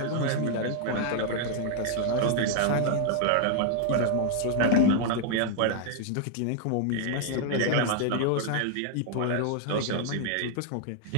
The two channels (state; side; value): different; both; correlation 0.00